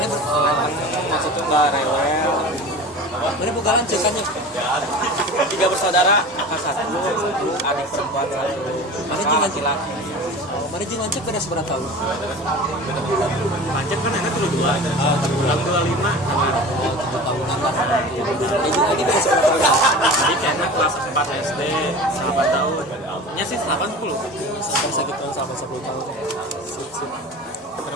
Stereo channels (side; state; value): both; normal; correlation 0.35